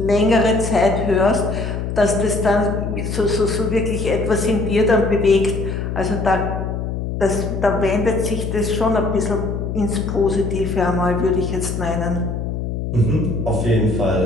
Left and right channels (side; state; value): left; noise; hum, 4 dB below the sound